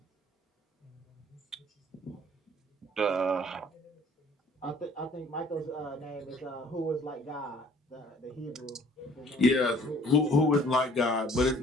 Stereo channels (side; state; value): both; normal; correlation 0.55